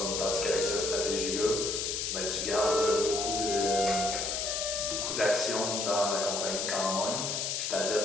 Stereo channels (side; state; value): left; noise; hiss, 1 dB below the sound